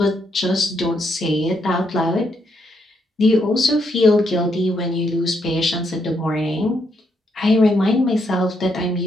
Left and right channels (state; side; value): normal; both; correlation 0.77